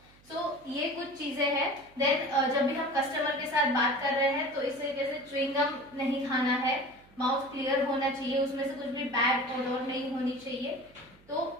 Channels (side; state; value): right; noise; hum, 28 dB below the sound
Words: सो ये कुछ चीजें हैं। देन जब भी हम कस्टमर के साथ बात कर रहे हैं तो इस तरीके से च्युइंग गम नहीं खाना है, माउथ क्लियर होना चाहिए, उसमें से कुछ भी बैड ओडोर नहीं होनी चाहिए। तो